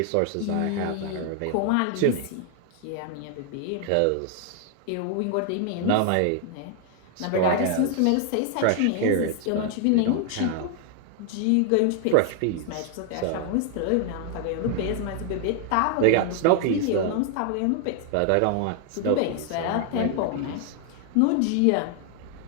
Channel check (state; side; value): different; both; correlation 0.00